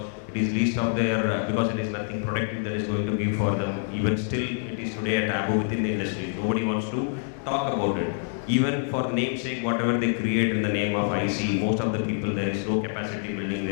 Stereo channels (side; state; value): right; silent; 59 dB below the other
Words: it is least of their, because it is nothing productive that is going to give for them. Even still, it is today a taboo within the industry. Nobody wants to talk about it. Even for namesake, whatever they create in the name of IC, most of the people, there is no capacity building,